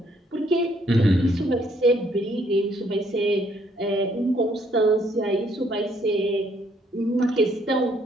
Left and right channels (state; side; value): normal; both; correlation 0.67